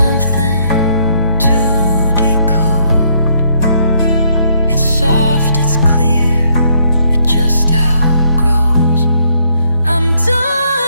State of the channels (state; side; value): inverted; both; correlation -0.71